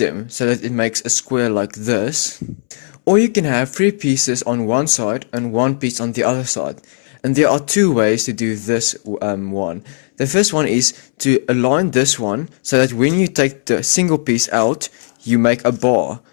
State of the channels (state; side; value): silent; right; 67 dB below the other